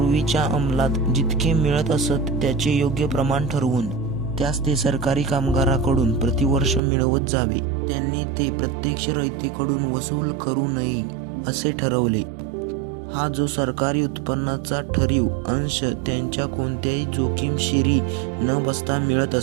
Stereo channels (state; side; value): drops out; left; at 6.8 s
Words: अंमलात जितके मिळत असत त्याचे योग्य प्रमाण ठरवून त्यास ते सरकारी कामगाराकडून प्रतिवर्ष मिळवत जावे. त्यांनी ते प्रत्यक्ष रयतेकडून वसूल करू नये असे ठरवले. हा जो सरकारी उत्पन्नाचा ठरीव अंश त्यांच्या कोणत्याही जोखीमशिरी न बसता मिळत